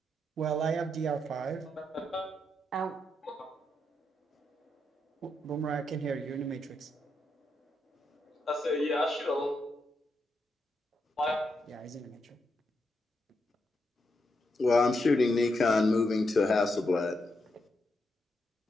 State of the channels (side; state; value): both; normal; correlation 0.82